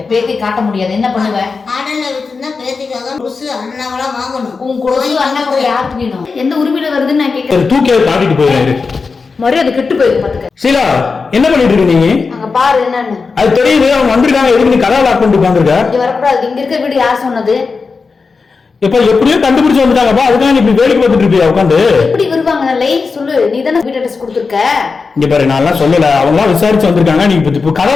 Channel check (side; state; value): right; quieter; 4.6 dB